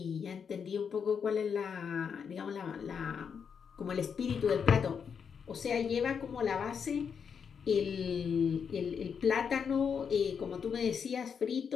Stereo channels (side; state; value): right; quieter; 6.7 dB